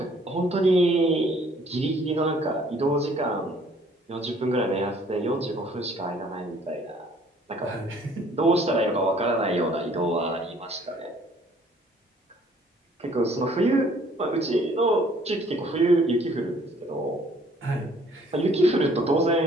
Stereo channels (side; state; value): both; normal; correlation 0.59